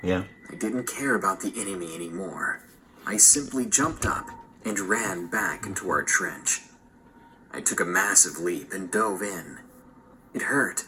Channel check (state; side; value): identical; both; correlation 1.00